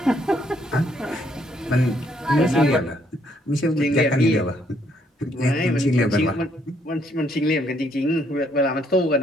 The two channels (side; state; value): both; normal; correlation 0.70